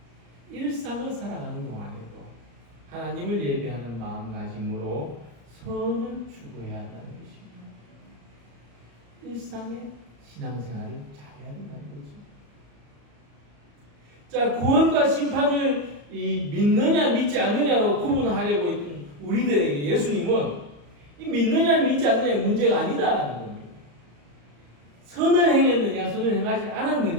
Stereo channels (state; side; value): late; left; 35 ms